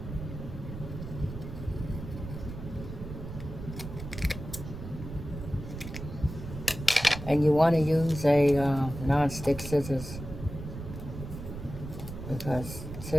And you want to use a non-stick scissors, because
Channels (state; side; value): noise; right; rumble, 9 dB below the sound